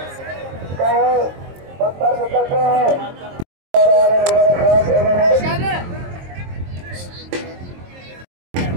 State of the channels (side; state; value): left; late; 23 ms